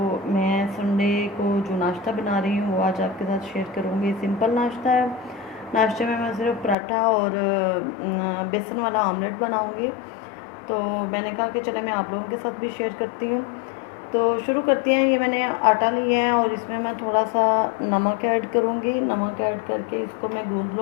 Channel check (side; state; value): right; drops out; at 6.8 s